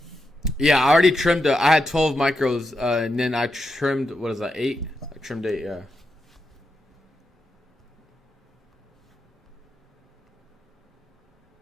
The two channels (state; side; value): normal; both; correlation 0.85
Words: Yeah, I already trimmed. I had 12 micros, and then I trimmed. What is that? 8. I trimmed 8. Yeah.